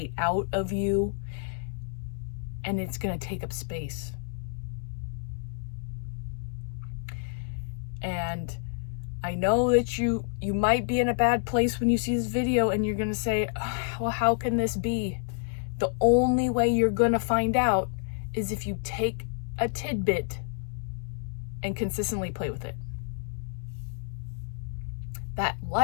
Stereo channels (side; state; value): right; silent; 59 dB below the other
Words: out of you and it's going to take up space. And I know that you might be in a bad place when you see this video and you're going to say, well, how can this be? The only way you're going to find out is if you take a tidbit and consistently play with it. That